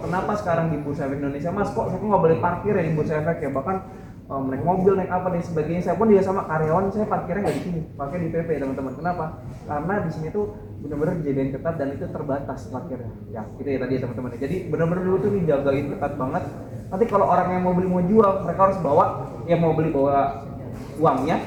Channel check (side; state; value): both; identical; correlation 1.00